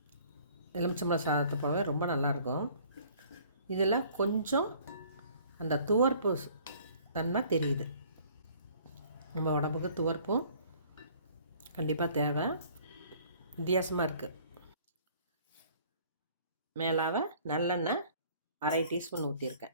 எலுமிச்சம்பழம் சாதத்தை போலவே ரொம்ப நல்லாயிருக்கும். இதில் கொஞ்சம் அந்த துவர்ப்பு தன்மை தெரியுது. நம்ம உடம்புக்கு துவர்ப்பும் கண்டிப்பாக தேவை. வித்தியாசமாக இருக்குது. மேலாக நல்லெண்ணெய் 1/2 டீஸ்பூன்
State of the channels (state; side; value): inverted; both; correlation -0.55